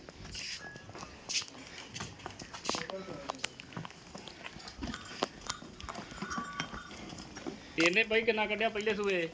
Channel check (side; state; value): both; identical; correlation 1.00